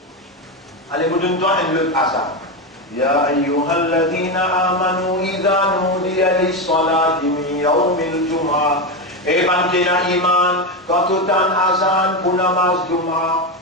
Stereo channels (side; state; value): both; normal; correlation 0.13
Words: Allez, vous donnez-toi un autre Azan. يا أيها الذين آمنوا إذا نودي للصلاة من يوم الجمعة. Et bantena iman quand tu as un azan pour namaz Juma.